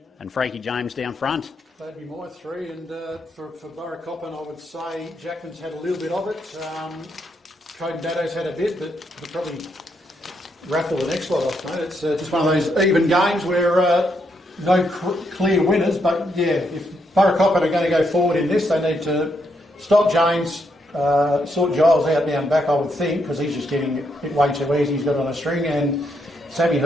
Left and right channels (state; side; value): normal; both; correlation 0.78